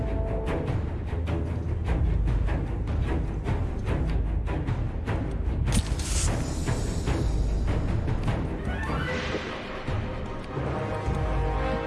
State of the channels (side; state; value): both; identical; correlation 1.00